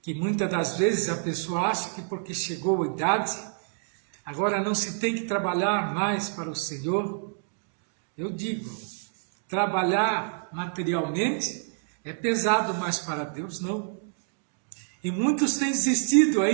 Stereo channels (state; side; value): silent; left; digital silence